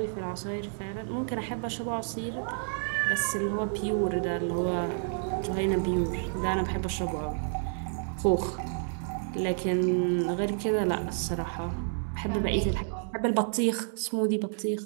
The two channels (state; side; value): silent; left; digital silence